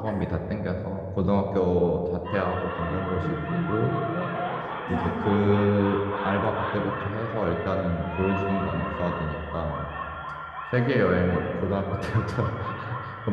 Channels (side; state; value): both; identical; correlation 1.00